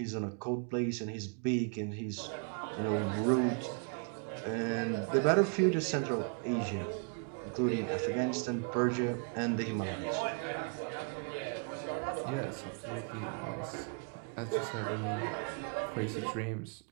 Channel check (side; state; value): left; quieter; 39.2 dB